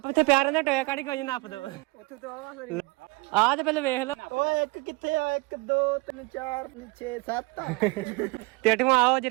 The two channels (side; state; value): left; quieter; 26.3 dB